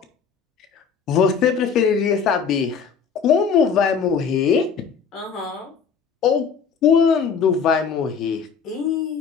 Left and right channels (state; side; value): quieter; right; 6.3 dB